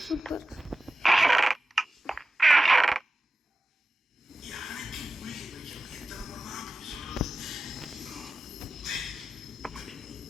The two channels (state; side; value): normal; both; correlation 0.95